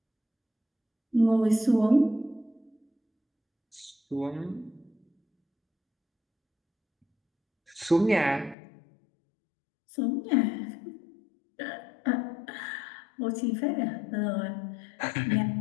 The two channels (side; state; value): right; drops out; at 8.6 s